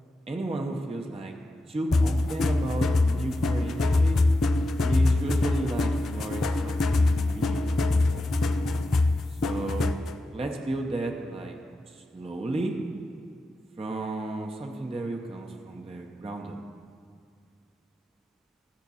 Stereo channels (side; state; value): both; normal; correlation 0.90